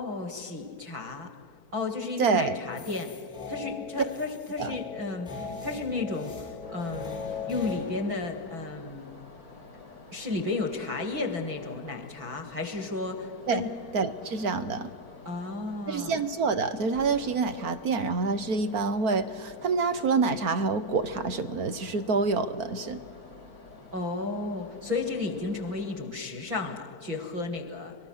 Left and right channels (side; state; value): left; late; 4.5 ms